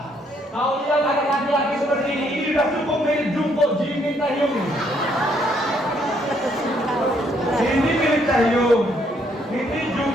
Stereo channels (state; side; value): normal; both; correlation 0.70